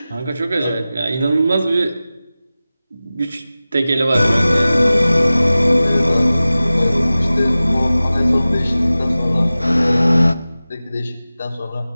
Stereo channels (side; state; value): both; inverted; correlation -0.96